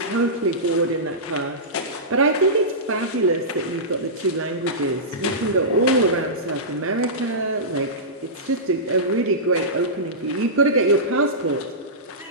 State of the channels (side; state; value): both; normal; correlation -0.18